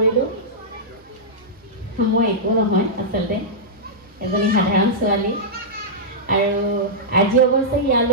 মই একো নহয়, আচলতে এজনী সাধাৰণ ছোৱালী আৰু আজি অৱশ্যে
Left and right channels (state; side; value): normal; both; correlation -0.12